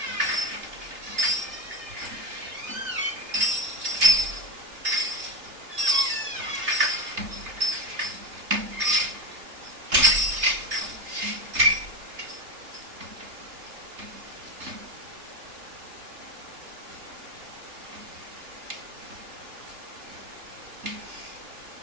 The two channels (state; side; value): late; left; 3.1 ms